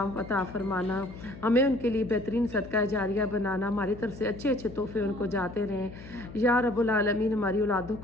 عطا فرمانا. ہمیں ان کے لیے بہترین صدقہ جاریہ بنانا, ہماری طرف سے اچھے اچھے تحفے ان کو جاتے رہیں. یا رب العالمین ہماری اولادوں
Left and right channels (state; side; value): noise; left; hum, 15 dB below the sound